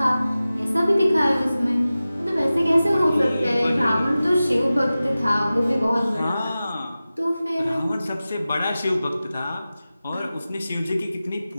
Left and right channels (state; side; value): inverted; both; correlation -0.95